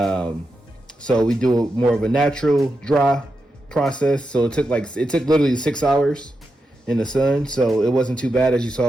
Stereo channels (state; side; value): normal; both; correlation 0.87